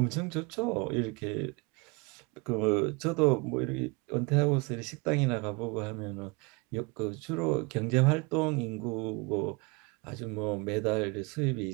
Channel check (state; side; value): quieter; left; 27.5 dB